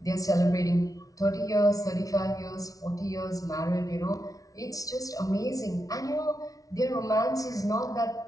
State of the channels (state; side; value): late; right; 0.18 ms